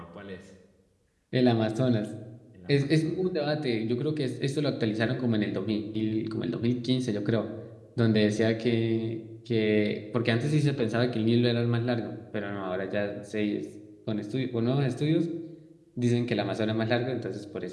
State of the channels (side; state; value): both; identical; correlation 1.00